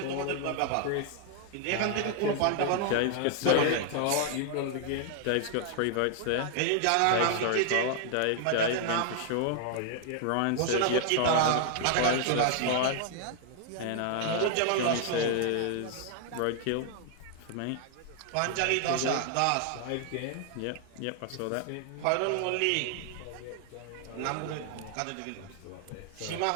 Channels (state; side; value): different; both; correlation 0.00